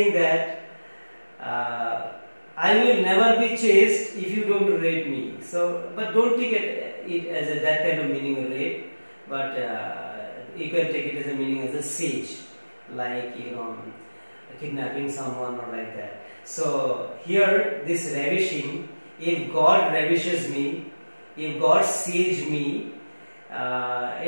that I will never be chaste if you don't rape me. So, but don't take it as that kind of meaning of rape, but you can take it as a meaning as a siege, like kidnapping someone or like that. So here this ravishing, if God ravishes me, if God sieges me,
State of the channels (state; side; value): inverted; both; correlation -1.00